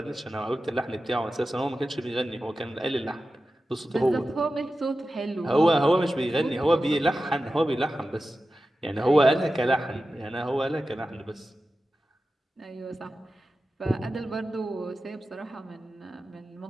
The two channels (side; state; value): both; normal; correlation 0.93